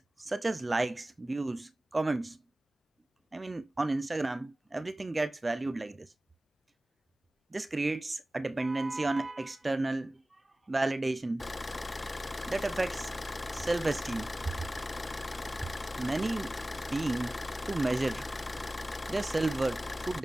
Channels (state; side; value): normal; both; correlation 0.97